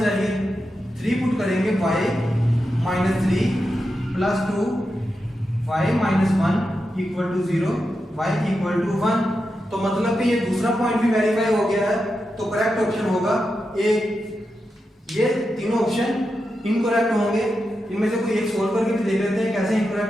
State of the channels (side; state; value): both; normal; correlation 0.88